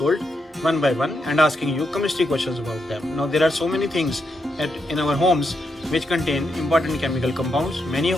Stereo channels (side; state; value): both; normal; correlation 0.82